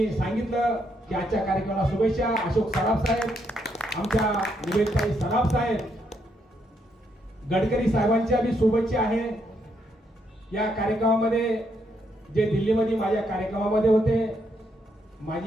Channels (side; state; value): both; normal; correlation 0.76